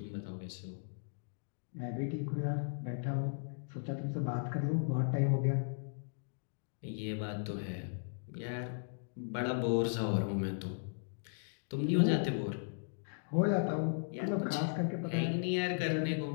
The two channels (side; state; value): right; silent; digital silence